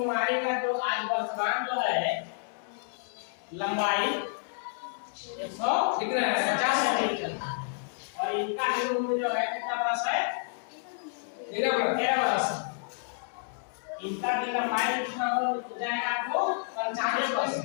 का जो आज वर्तमान जो है लंबाई 150 सेंटीमीटर और इनका भी उम्र जो है कितना बरस है 13 बरस। इनका भी लंबाई कितना हो जाएगा आपको 95%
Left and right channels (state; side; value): silent; right; digital silence